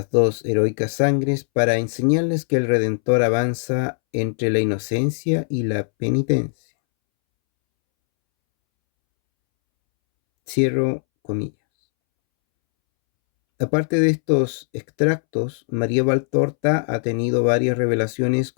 dos heroicas sangres para enseñarles que el Redentor avanza entre la inocencia y la penitencia. Cierro comillas. Aparte de estos extractos, María Valtorta ha tenido varias revelaciones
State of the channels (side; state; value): right; silent; 65 dB below the other